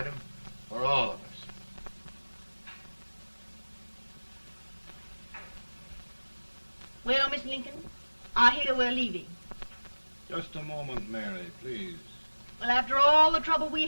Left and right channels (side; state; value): both; inverted; correlation -1.00